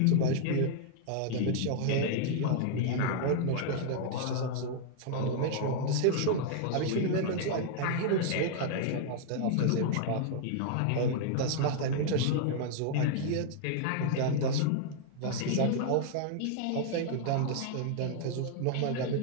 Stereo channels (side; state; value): both; different; correlation -0.01